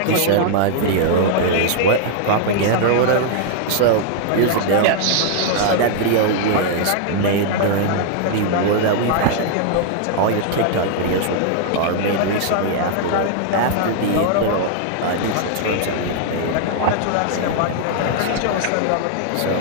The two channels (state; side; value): different; both; correlation -0.01